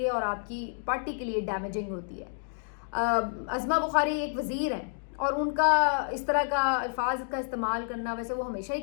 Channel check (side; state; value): right; silent; digital silence